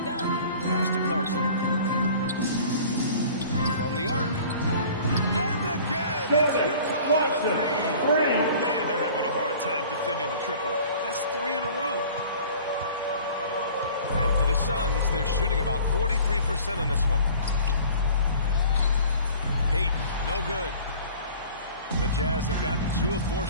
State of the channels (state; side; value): inverted; both; correlation -0.47